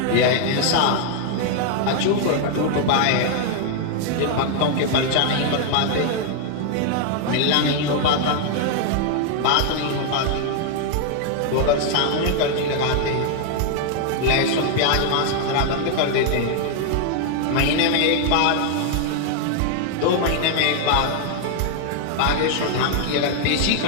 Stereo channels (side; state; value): both; different; correlation 0.00